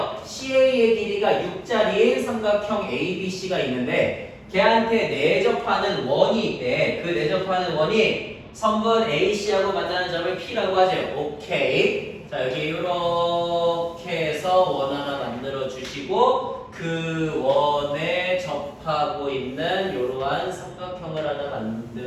CA의 길이가 6짜리인 삼각형 ABC가 있는데 걔한테 내접하는 원이 있대. 그 내접하는 원이 선분 AC하고 만나는 점을 P라고 하죠. 오케이. 자, 여기 이렇게 해서 원 하나 만들어 주시고 그 원에 접하고 있는 이러한 삼각형을 하나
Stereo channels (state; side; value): identical; both; correlation 1.00